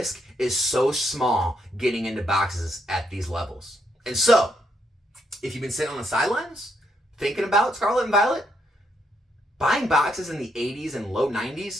is so small getting into boxes at these levels. And so, if you've been sitting on the sidelines, thinking about Scarlet and Violet, buying boxes in the 80s and low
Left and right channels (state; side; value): normal; both; correlation 0.76